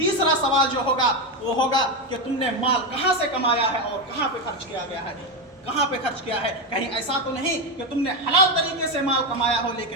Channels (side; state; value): both; normal; correlation 0.11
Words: سوال جو ہوگا وہ ہوگا کہ تم نے مال کہاں سے کمایا ہے اور کہاں پہ خرچ کیا گیا ہے؟ کہاں پہ خرچ کیا ہے؟ کہیں ایسا تو نہیں کہ تم نے حلال طریقے سے مال کمایا ہو